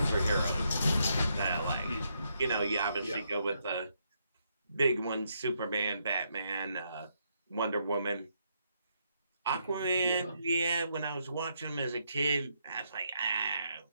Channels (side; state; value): both; inverted; correlation -0.77